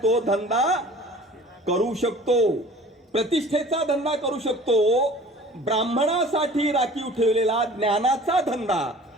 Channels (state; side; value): normal; both; correlation 0.46